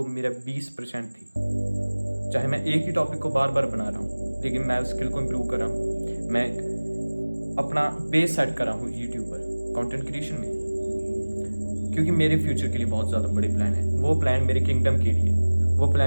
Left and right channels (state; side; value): inverted; both; correlation -1.00